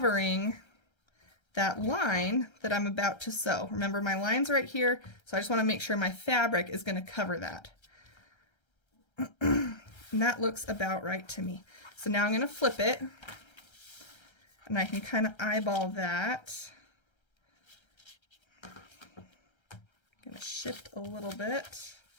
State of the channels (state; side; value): late; right; 1.3 ms